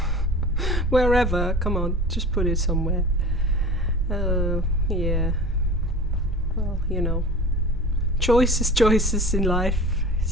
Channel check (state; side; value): normal; both; correlation 0.38